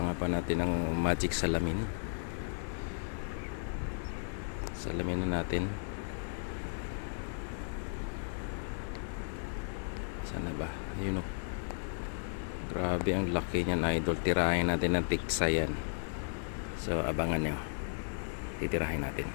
pa natin ng magic salamin? Salamin na natin. Sana ba? Ayun o. Grabe ang laki niyan idol. Tirahin natin ng tiksa yan. So abangan nyo. Titirahin natin.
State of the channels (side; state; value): right; silent; 54 dB below the other